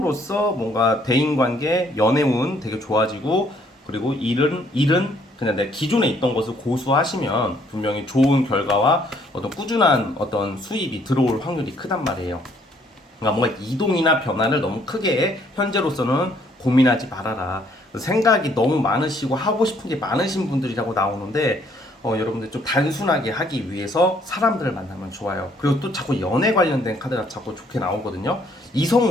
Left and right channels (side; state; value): both; normal; correlation 0.65